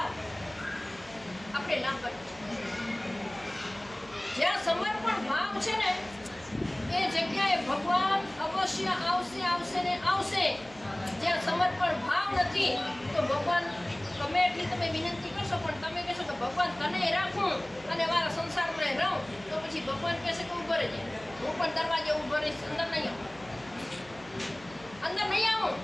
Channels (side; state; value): right; noise; hum, 23 dB below the sound